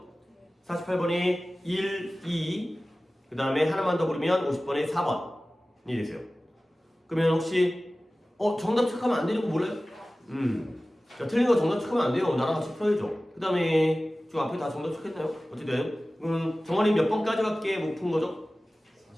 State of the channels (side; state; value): both; normal; correlation 0.97